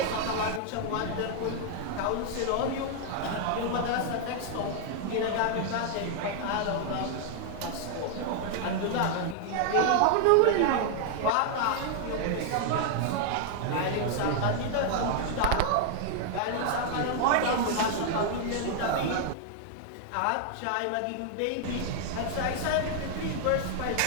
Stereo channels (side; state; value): both; different; correlation 0.00